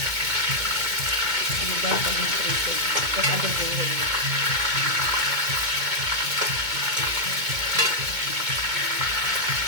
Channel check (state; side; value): late; left; 2.2 ms